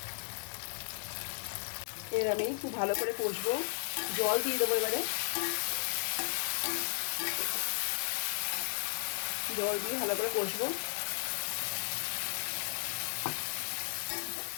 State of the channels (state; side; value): silent; right; digital silence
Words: এর আমি খুব ভালো করে কষবো, জল দিয়ে দেবো এবারে। জল দিয়ে ভালো করে কষবো।